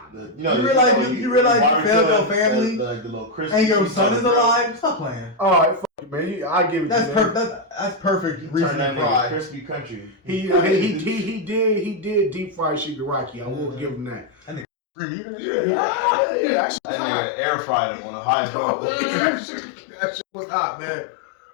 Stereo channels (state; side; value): drops out; right; at 14.7 s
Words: you realize you failed your family the little Christmas and your son is alive? Stop playing. Alright, fuck it, man. I give it to you. That's perfect reason to cry. Crispy country. He did deep fry Shigaraki. I will give him that. Yeah. That nigga air fried him on the highest level. That shit was hot, man.